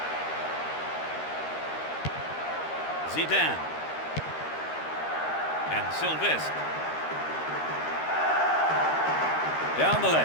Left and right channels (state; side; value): late; right; 13 ms